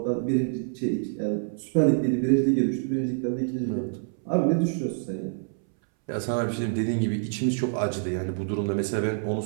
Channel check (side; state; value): left; silent; 60 dB below the other